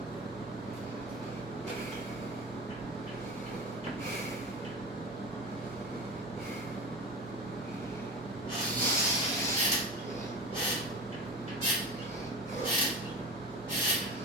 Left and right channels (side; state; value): both; normal; correlation 0.29